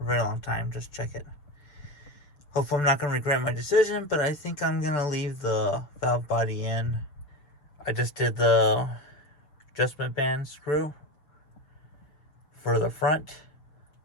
very long time. Just check it. Hopefully I'm not going to regret my decision, but I think I'm going to leave the valve body in. I just did the adjustment band screw for the front,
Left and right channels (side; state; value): right; late; 6.5 ms